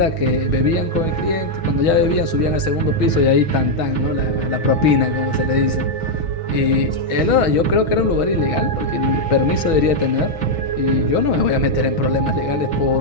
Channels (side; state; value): right; late; 6.2 ms